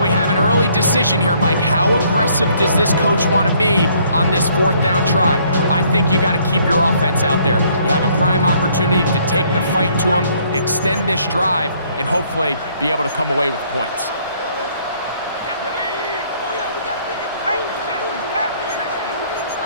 have an early decision here, Mike. How aggressive does this coach want to be on this 4th down try? I think you got to keep your offense out there. You have a prime opportunity to take the fight to them, extend this drive, and hopefully be able to come away with points.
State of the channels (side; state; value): both; inverted; correlation -0.64